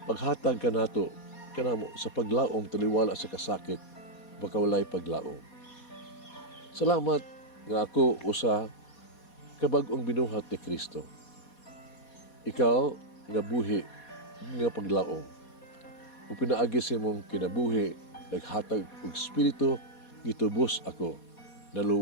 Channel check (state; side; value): late; right; 4.2 ms